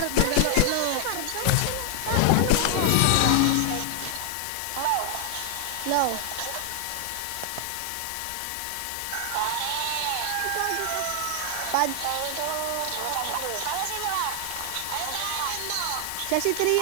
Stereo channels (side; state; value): both; different; correlation 0.00